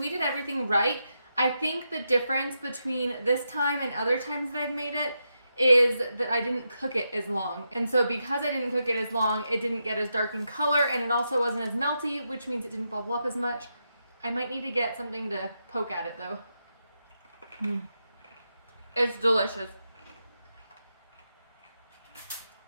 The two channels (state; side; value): inverted; both; correlation -0.85